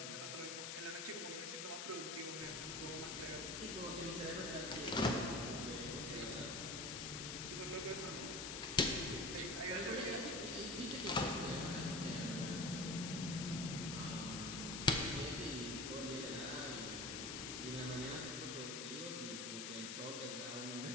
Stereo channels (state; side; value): noise; left; hiss, 4 dB below the sound